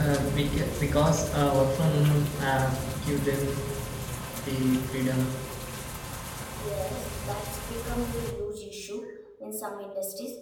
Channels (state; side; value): identical; both; correlation 1.00